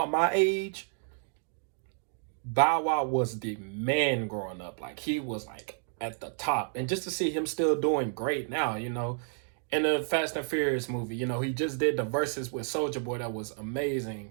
my age, Bow Wow was the man growing up. Like, he was like at the top. And just to see him still doing great now, in the Fast and Furious movie, he just did the verses with Soulja Boy. That was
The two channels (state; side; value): silent; left; 57 dB below the other